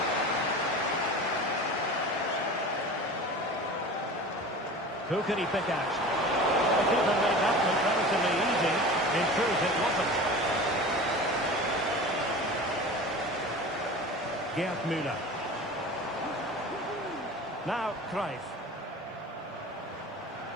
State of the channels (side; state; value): both; normal; correlation 0.36